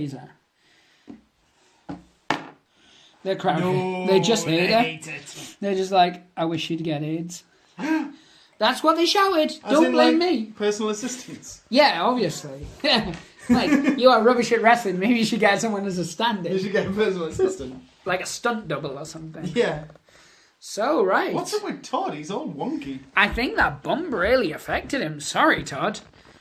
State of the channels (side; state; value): both; identical; correlation 1.00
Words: They're crowd. No, They just they hate her. hate it. They're just like, I wish you'd get AIDS. That's what they shouted. As Don't in, blame like, me. Personal assistants. Yeah, obviously. Like, you are rubbish at wrestling. Maybe you should get someone as a stand-in. You should get a personal assistant. Like a stunt double or something. Yeah. So, right. What's up with Todd? He's all wonky. I think that bump really affected him. Sorry, Todd.